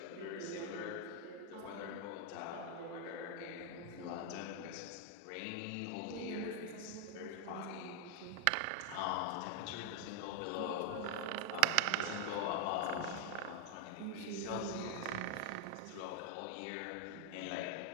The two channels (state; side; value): different; both; correlation 0.00